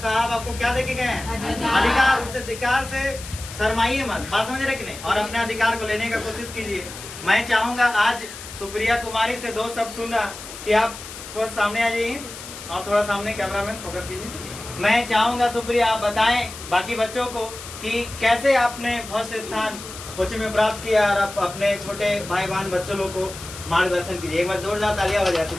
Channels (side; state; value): left; noise; hiss, 13 dB below the sound